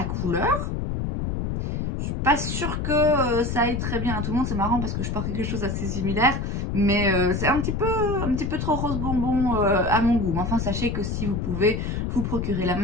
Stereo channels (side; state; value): left; noise; rumble, 2 dB below the sound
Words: couleur, je suis pas sûre que ça aille très bien à tout le monde. C'est marrant parce que je porte quelque chose assez similaire, mais c'est un petit peu trop rose bonbon à mon goût. Mais enfin, sachez que si vous pouvez vous procurer la